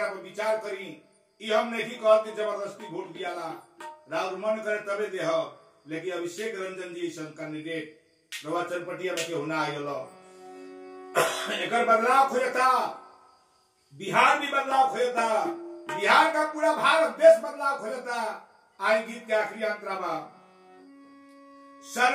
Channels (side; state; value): both; identical; correlation 1.00